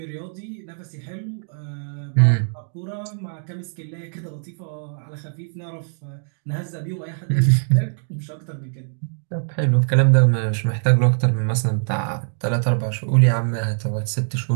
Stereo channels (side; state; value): left; silent; digital silence